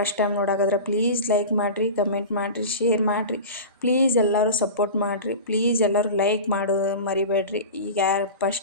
ಟೈಮ್ ನೋಡಾಕದ್ರೆ ಪ್ಲೀಸ್ ಲೈಕ್ ಮಾಡಿರಿ, ಕಮೆಂಟ್ ಮಾಡಿರಿ, ಶೇರ್ ಮಾಡಿರಿ. ಪ್ಲೀಸ್ ಎಲ್ಲರೂ ಸಪೋರ್ಟ್ ಮಾಡಿರಿ. ಪ್ಲೀಸ್ ಎಲ್ಲರೂ ಲೈಕ್ ಮಾಡೋದು ಮರಿಬೇಡ್ರಿ. ಈಗ ಯಾರು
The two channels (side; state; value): both; inverted; correlation -0.30